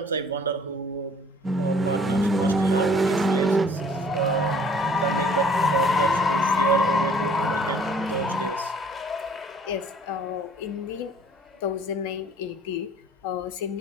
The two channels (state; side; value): normal; both; correlation 0.55